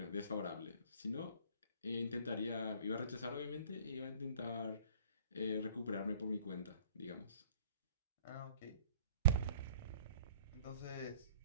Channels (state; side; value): inverted; both; correlation -0.50